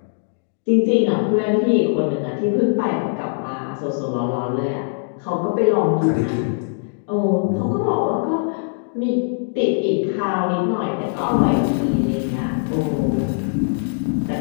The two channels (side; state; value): right; silent; digital silence